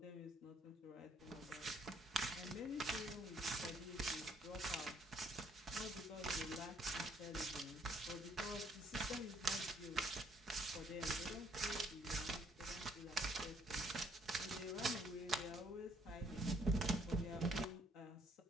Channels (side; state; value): both; normal; correlation 0.66